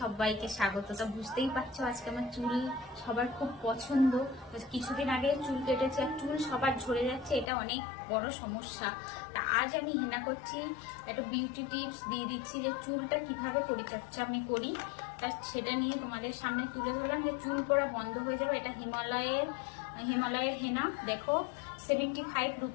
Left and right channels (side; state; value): right; drops out; at 7.5 s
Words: স্বাগত। তা বুঝতেই পারছো আজকে আমার চুল সবার খুব পছন্দ। কিছুদিন আগে চুল কেটেছে আর চুল সবার ঝরে যাচ্ছে, এটা অনেক বড় সমস্যা। তা আজ আমি হেনা করছি, একটা বিউটি টিপস দিয়ে দিচ্ছি যে চুলটা কিভাবে পরিচর্যা আমি করি, তা সেটা নিয়ে তোমাদের সামনে তুলে ধরলাম যে চুল পড়া বন্ধ হয়ে যাবে। এটা হিমালয়ের হেনা, দেখো 75